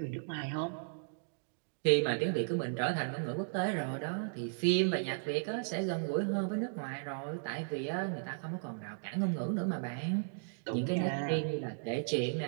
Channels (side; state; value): left; silent; digital silence